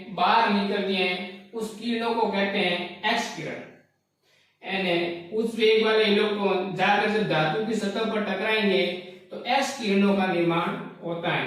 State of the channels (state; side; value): identical; both; correlation 1.00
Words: बाहर निकलती है। उस किरणों को कहते हैं एक्स किरण। यानी उस वेग वाले इलेक्ट्रॉन जाकर जब धातु की सतह पर टकराएंगे तो एक्स किरणों का निर्माण होता